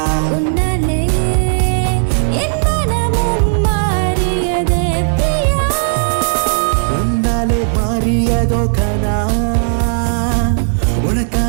உன்னாலே என் மனமும் மாறியதே பிரியா உன்னாலே மாறியதோ கனா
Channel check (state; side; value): silent; left; digital silence